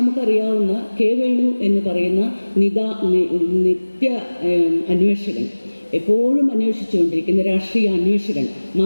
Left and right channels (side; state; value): both; inverted; correlation -1.00